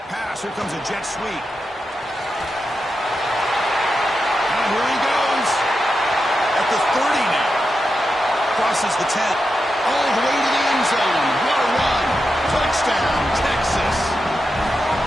pass. Here comes a jet sweep. And here he goes. At the 30 now. Crosses the 10. All the way to the end zone. What a run. Touchdown, Texas.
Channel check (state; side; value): normal; both; correlation 0.88